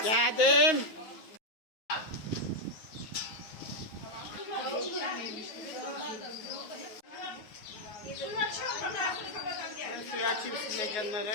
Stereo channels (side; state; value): right; late; 9.5 ms